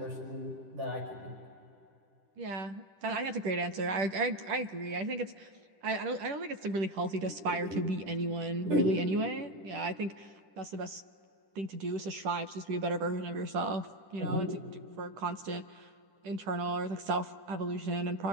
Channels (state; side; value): late; left; 10 ms